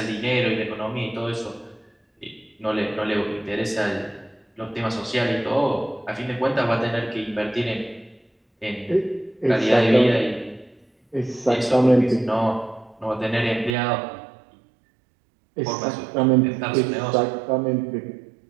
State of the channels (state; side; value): drops out; left; at 13.8 s